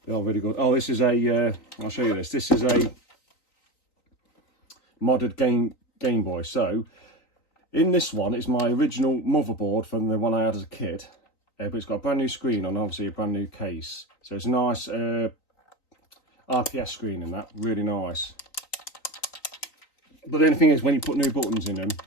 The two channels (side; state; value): right; late; 3.9 ms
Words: They are really good. Oh, this is a. I'll show you this. This is a modded Game Boy. So in this one, it's my original motherboard from the one I had as a kid, but it's got a brand new screen on, obviously a brand new case. So it's a nice RPS screen in that, really nice. But the only thing is, when you put new buttons in them,